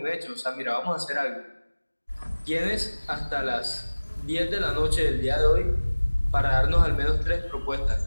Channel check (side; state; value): both; inverted; correlation -1.00